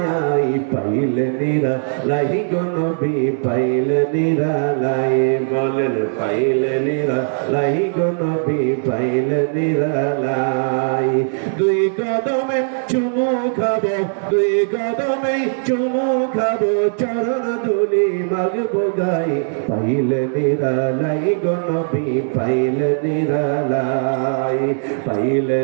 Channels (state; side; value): silent; left; 67 dB below the other